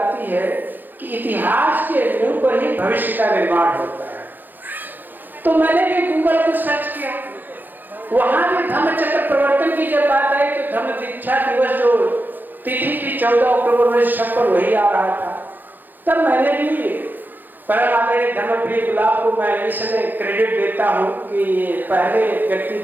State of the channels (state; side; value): late; left; 0.088 ms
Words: है कि इतिहास के नींव पर ही भविष्य का निर्माण होता है। तो मैंने भी गूगल को सर्च किया, वहां भी धम्म चक्र प्रवर्तन की जब बात आई तो धम्म दीक्षा दिवस जो तिथि की 14 अक्टूबर 1956 वही आ रहा था। तब मैंने भी परम आदरणीय धर्मप्रिय गुलाब को मैं इसलिए क्रेडिट देता हूँ कि ये पहले व्यक्ति